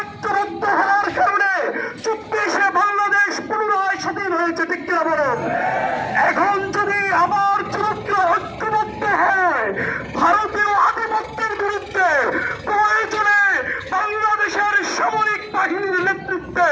হওয়ার কারণে 24 বাংলাদেশ পুনরায় স্বাধীন হয়েছে, ঠিক কিনা বলেন? এখন যদি আবার যুবকরা ঐক্যবদ্ধ হয় ভারতীয় আধিপত্যের বিরুদ্ধে, প্রয়োজনে বাংলাদেশের সামরিক বাহিনীর নেতৃত্বে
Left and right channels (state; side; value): identical; both; correlation 1.00